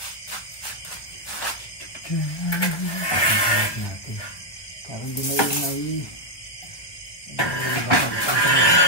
Parang di may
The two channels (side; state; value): right; late; 1.5 ms